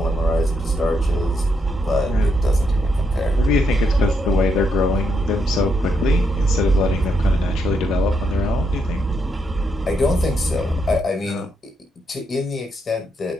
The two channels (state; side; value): normal; both; correlation 0.79